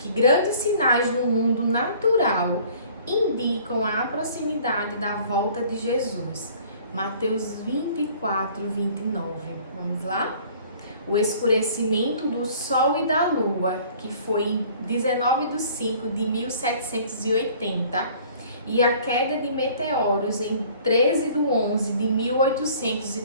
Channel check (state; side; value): inverted; both; correlation -0.53